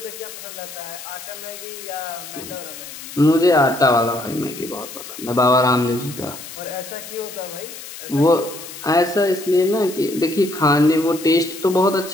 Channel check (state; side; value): noise; left; hiss, 13 dB below the sound